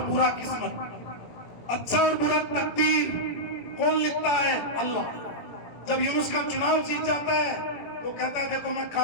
برا قسمت، اچھا اور برا تقدیر کون لکھتا ہے؟ اللہ۔ جب یونس کا چناؤ جیت جاتا ہے تو کہتا ہے دیکھو میں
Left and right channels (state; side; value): late; right; 17 ms